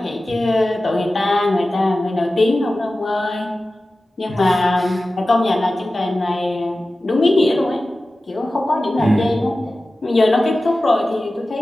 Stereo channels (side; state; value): both; normal; correlation 0.95